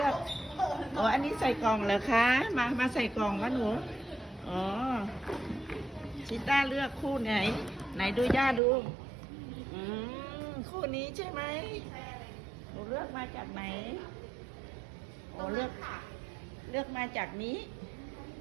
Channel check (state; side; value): drops out; left; at 8.6 s